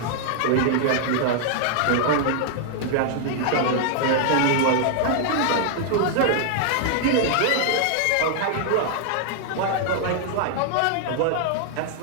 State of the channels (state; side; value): different; both; correlation 0.00